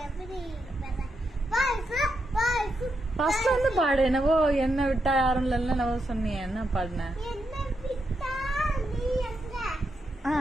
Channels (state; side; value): normal; both; correlation 0.83